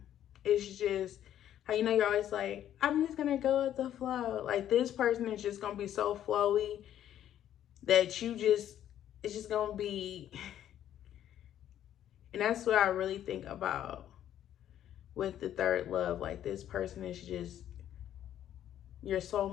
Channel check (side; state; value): right; quieter; 11.1 dB